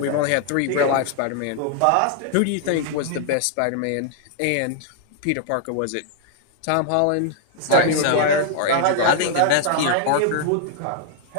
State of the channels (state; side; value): different; both; correlation 0.00